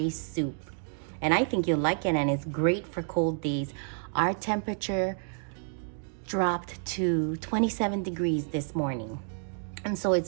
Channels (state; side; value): silent; left; 58 dB below the other